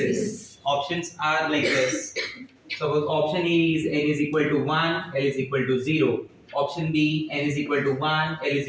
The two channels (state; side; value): identical; both; correlation 1.00